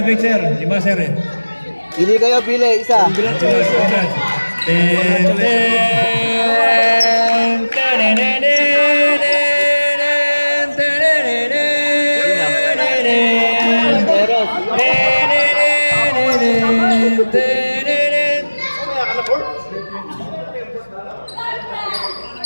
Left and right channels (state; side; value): inverted; both; correlation -1.00